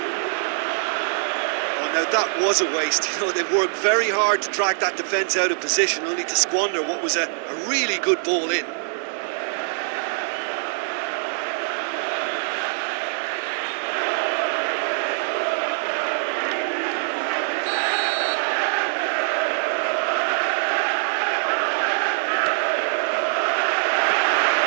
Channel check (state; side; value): silent; left; 63 dB below the other